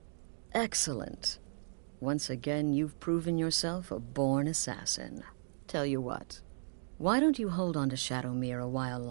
Excellent. Once again, you've proven yourself a born assassin. Tell you what, why don't you hold on to Shadowmere a while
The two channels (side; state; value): left; silent; digital silence